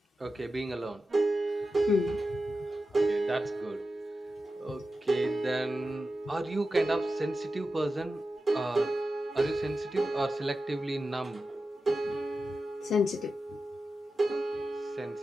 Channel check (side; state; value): both; normal; correlation 0.92